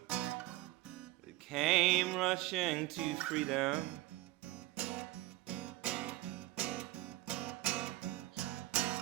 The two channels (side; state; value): left; quieter; 18.1 dB